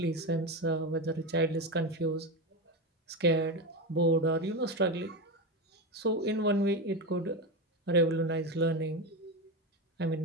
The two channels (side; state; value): both; normal; correlation 0.17